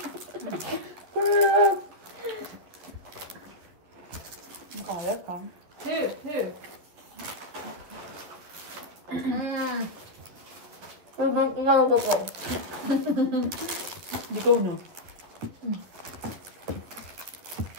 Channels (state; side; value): late; left; 11 ms